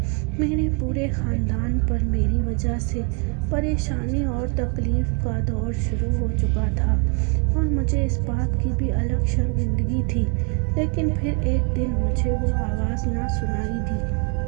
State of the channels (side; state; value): left; quieter; 34.1 dB